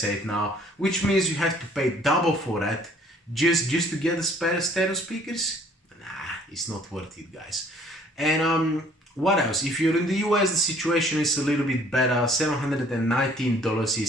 now, which means you have to pay double for that just to get the stereo speakers. Nah, it's not worth it, guys. And what else? If you're in the US, the situation is a little bit better. $719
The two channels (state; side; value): normal; both; correlation 0.58